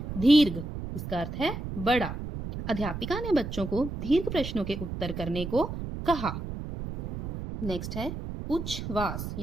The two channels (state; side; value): noise; right; rumble, 7 dB below the sound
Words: दीर्घ, इसका अर्थ है बड़ा। अध्यापिका ने बच्चों को दीर्घ प्रश्नों के उत्तर करने को कहा। नेक्स्ट है उच्छ्वास